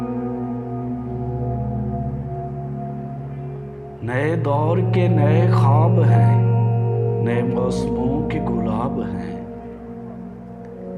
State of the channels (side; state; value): both; identical; correlation 1.00